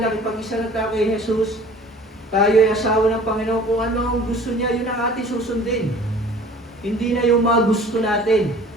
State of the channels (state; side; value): normal; both; correlation 0.48